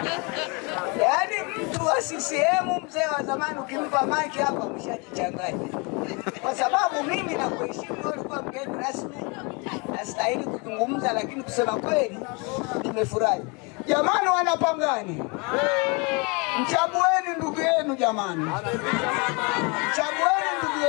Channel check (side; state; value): right; quieter; 30.7 dB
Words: Yaani mtu wa CCM mzee wa zamani ukimpa mic hapa umeshajichanganya. Kwa sababu mimi na kuheshimu wewe ulikuwa mgeni rasmi, nastahili kuzungumza, lakini kusema kweli nimefurahi. Jamani Wanapangani, mchagueni ndugu yenu jamani. Mchagueni ndugu